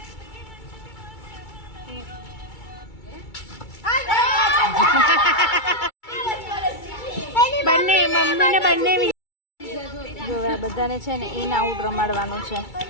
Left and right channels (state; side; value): late; right; 2.3 ms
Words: બંને મમ્મીને બંને જો આ બધાને છે ને ઇન આઉટ રમાડવાનું છે.